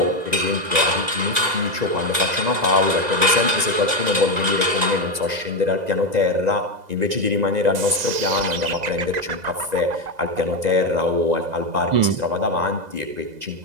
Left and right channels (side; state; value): left; late; 2.0 ms